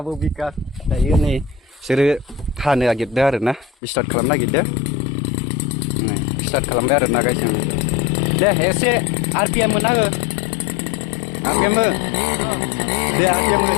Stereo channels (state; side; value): drops out; right; at 3.7 s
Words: बिकास दायो नै बिसोरो हानो नागिरदों आरोना स्टार्ट खालामनो नागिरदों। नै स्टार्ट खालामबाय आरोना गाइस जों। दे एसे आरपिएम मोना हो। आरपिएम हो। दे आरपिएम हो।